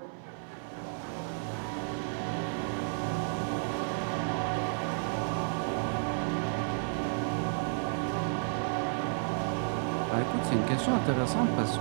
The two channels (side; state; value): left; silent; 56 dB below the other